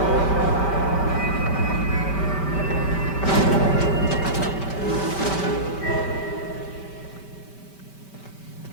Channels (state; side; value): late; right; 5.2 ms